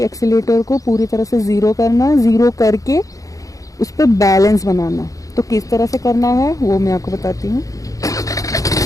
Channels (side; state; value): right; late; 0.16 ms